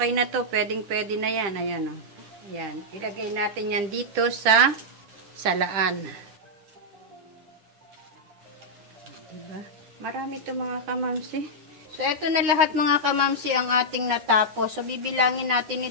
na to. Pwedeng-pwede na yan. Ayan o. Ayan. Ilagay natin yan dito sa salaan. Diba? Marami to mga kamamsi. So, ito na lahat mga kamamsi ang ating natapos. So, bibilangin natin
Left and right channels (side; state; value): left; late; 9.9 ms